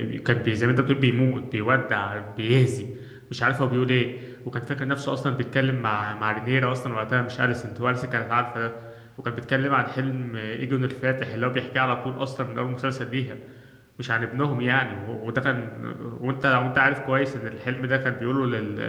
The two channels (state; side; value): identical; both; correlation 1.00